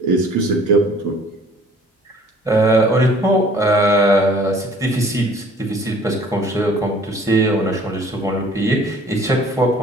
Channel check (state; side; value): normal; both; correlation 0.54